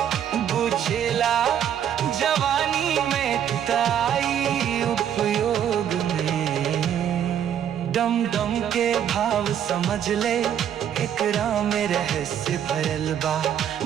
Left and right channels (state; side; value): quieter; left; 9.6 dB